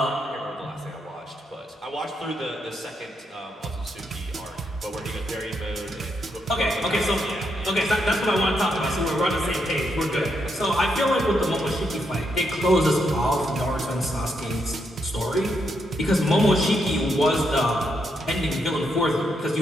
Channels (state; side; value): normal; both; correlation 0.79